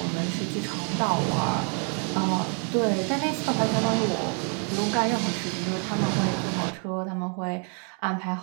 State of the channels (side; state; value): left; quieter; 39.8 dB